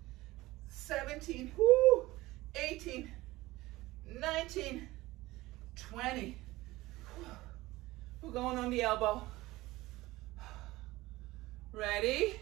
17, 18, 19, 20. We're going on the elbow. Ready?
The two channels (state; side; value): quieter; left; 18.8 dB